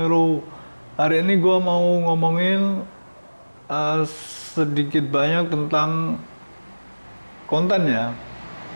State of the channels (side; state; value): both; inverted; correlation -1.00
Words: Hari ini gua mau ngomongin sedikit banyak tentang konten ya.